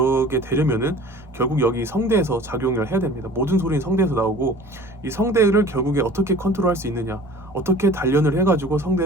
되려면은 결국 여기 성대에서 작용을 해야 됩니다. 모든 소리는 성대에서 나오고 이 성대를 결국에 어떻게 컨트롤할 수 있느냐, 어떻게 단련을 해가지고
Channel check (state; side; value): normal; both; correlation 0.45